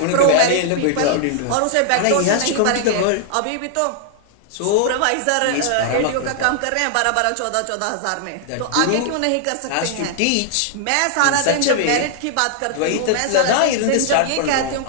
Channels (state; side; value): different; both; correlation -0.01